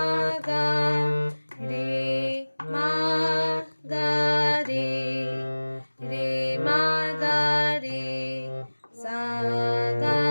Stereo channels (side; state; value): both; inverted; correlation -1.00